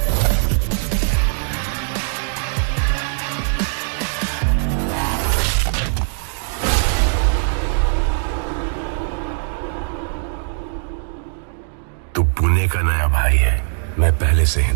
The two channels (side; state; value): left; silent; digital silence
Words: तू पुणे का नया भाई है, मैं पहले से